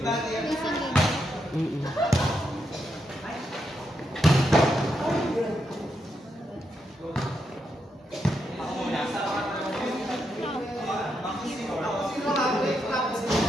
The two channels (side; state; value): both; normal; correlation 0.82